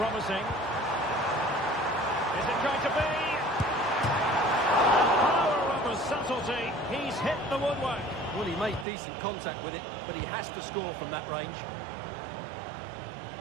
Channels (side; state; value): left; drops out; at 8.8 s